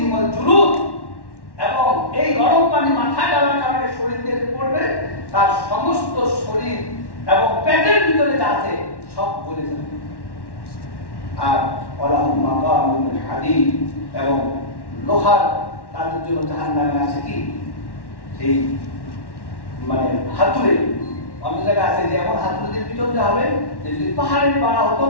ওয়াল জুলুদ, এবং এই গরম পানি মাথায় ঢালার কারণে শরীর থেকে পড়বে, তার সমস্ত শরীর এবং পেটের ভিতরে যা আছে সব গলে যাবে। আর ওয়ালাহুম মাকামুন মিন হাদীদ, এবং লোহার তাদের জন্য জাহান্নামে আছে কি সেই মানে হাতুড়ে। অন্য জায়গায় আছে যে এমন হাতুড়ে দিয়ে পিটন দেওয়া হবে যে যদি পাহাড়ের পাড়া হতো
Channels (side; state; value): right; late; 1.1 ms